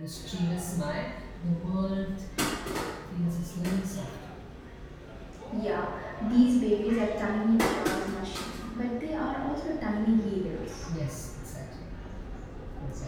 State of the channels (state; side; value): identical; both; correlation 1.00